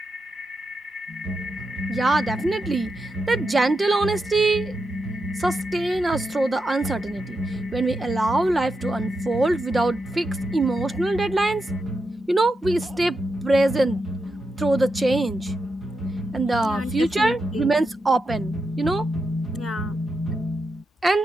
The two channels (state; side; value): normal; both; correlation 0.86